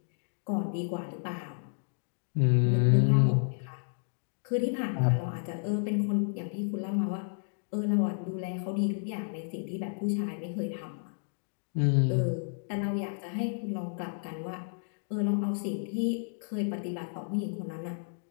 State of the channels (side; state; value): right; silent; digital silence